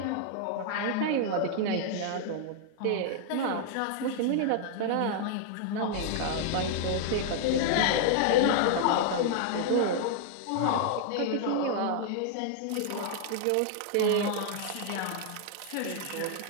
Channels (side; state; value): both; different; correlation -0.01